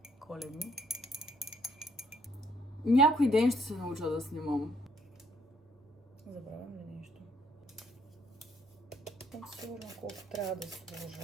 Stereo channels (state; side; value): normal; both; correlation 0.67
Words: Коледни. Някой ден ще се науча да снимам. Забравям ли нещо? Сигурно колко трябва да